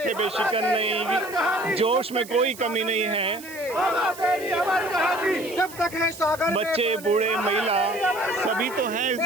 पे शिकन नहीं, जोश में कोई कमी नहीं है। बाबा तेरी अमर कहानी जब तक है सागर में बच्चे पानी। बूढ़े महिला सभी तो हैं इस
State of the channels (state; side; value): noise; right; hiss, 17 dB below the sound